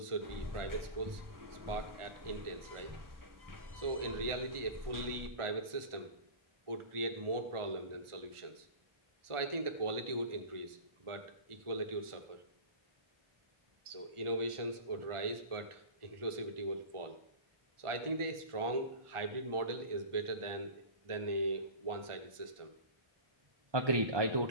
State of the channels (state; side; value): late; left; 1.4 ms